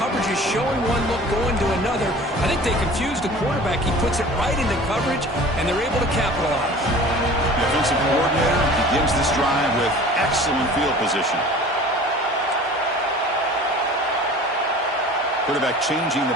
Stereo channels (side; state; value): both; normal; correlation 0.43